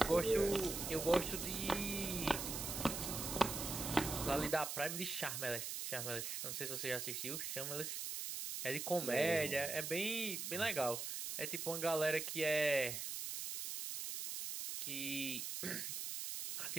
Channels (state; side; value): noise; right; hiss, 4 dB below the sound